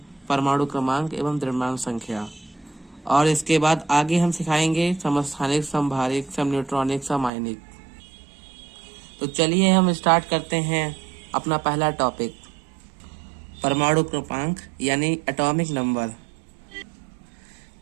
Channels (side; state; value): left; drops out; at 7.3 s